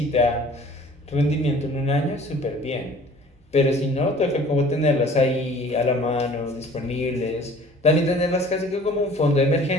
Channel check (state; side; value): normal; both; correlation 0.50